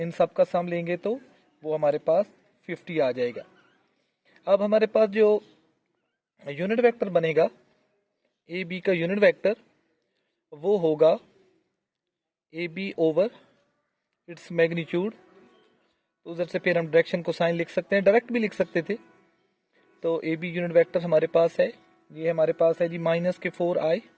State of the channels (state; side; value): identical; both; correlation 1.00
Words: सब का सम लेंगे तो वो हमारे पास 50 आ जाएगा। अब हमारे पास जो यूनिट वेक्टर बनेगा ए बी का यूनिट वेक्टर, वो होगा A B over its magnitude. तो उधर से फिर हम डायरेक्शन को साइन लिख सकते हैं, डायरेक्ट भी लिख सकते थे। तो ए बी यूनिट वेक्टर हमारे पास है, ये हमारे पास है जी माइनस के 4i